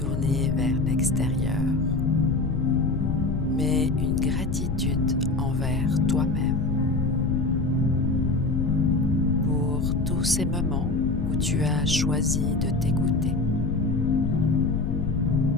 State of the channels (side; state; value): left; noise; rumble, 3 dB below the sound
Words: vers l'extérieur, mais une gratitude envers toi-même pour tous ces moments où tu as choisi de t'écouter,